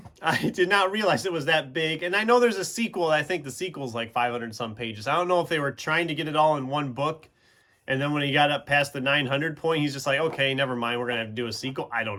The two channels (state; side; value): identical; both; correlation 1.00